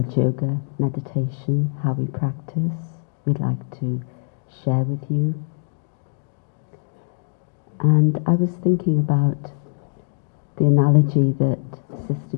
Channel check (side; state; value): right; silent; digital silence